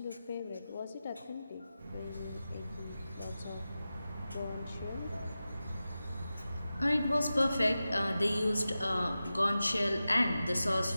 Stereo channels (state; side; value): inverted; both; correlation -0.94